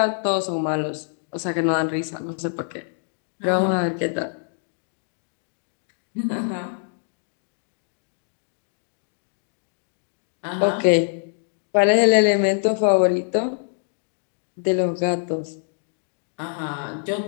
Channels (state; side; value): silent; right; digital silence